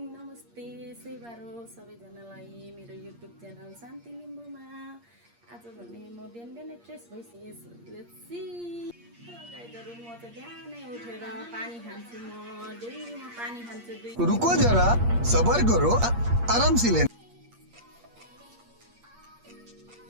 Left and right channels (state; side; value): late; left; 8.5 ms